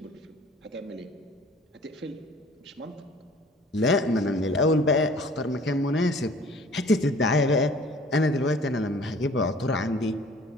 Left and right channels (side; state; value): both; normal; correlation 0.51